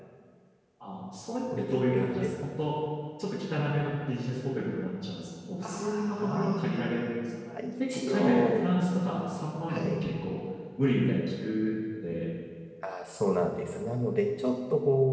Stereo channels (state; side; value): identical; both; correlation 1.00